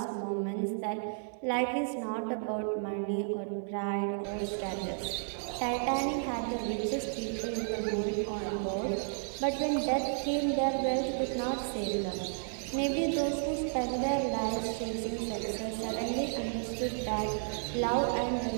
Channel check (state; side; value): silent; left; digital silence